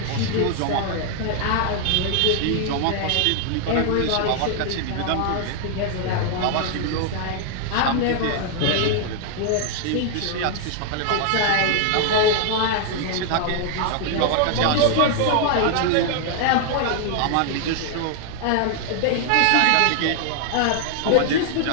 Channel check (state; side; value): different; both; correlation 0.00